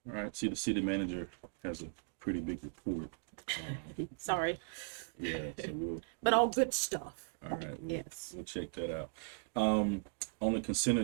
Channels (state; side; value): silent; left; digital silence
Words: All right, see, the city manager has a pretty big report. Sorry. Yeah, so but all good stuff. All right, yes. We'll check that out. On the consent